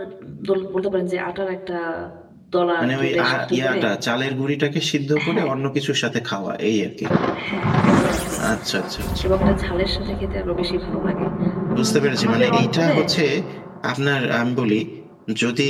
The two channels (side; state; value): both; identical; correlation 1.00